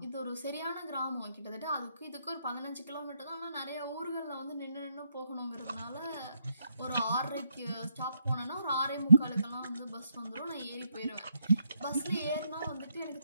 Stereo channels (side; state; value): both; inverted; correlation -0.78